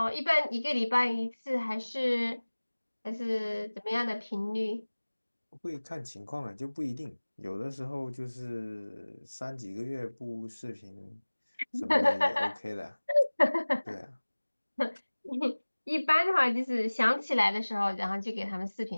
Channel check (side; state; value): both; inverted; correlation -1.00